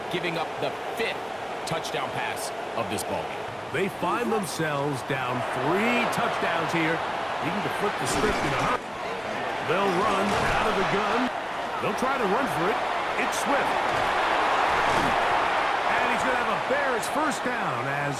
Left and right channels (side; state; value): both; identical; correlation 1.00